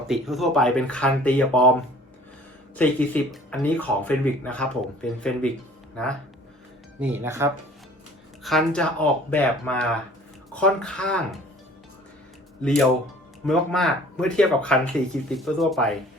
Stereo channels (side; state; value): both; normal; correlation 0.50